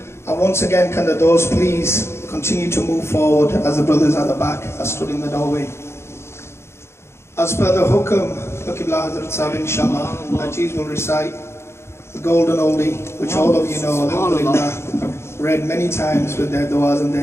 And once again, can the doors please continue to move forward as the brothers at the back are stood in the doorway. As per the hukum, Qibla Hazrat Sahib inshallah, Ajiz will recite the golden oldie, which all of you know, alhamdulillah, read many times with their du'as and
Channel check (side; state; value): right; late; 0.13 ms